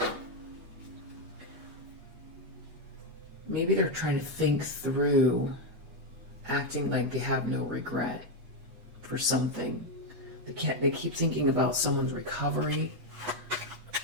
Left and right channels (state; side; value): late; left; 8.2 ms